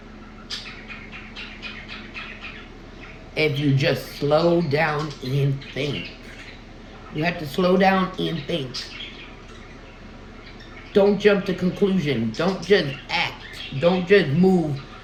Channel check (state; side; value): identical; both; correlation 1.00